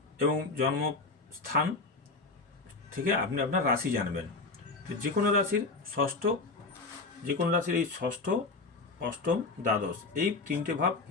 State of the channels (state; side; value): quieter; right; 3.7 dB